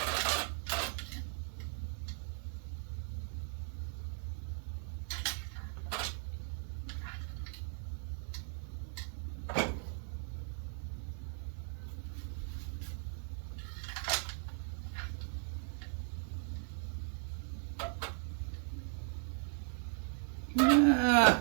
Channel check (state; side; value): silent; left; 52 dB below the other